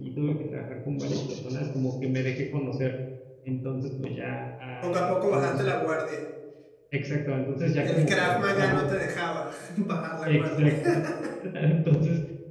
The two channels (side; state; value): both; identical; correlation 1.00